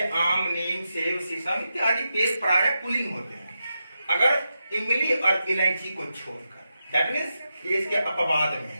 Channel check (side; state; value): both; inverted; correlation -0.88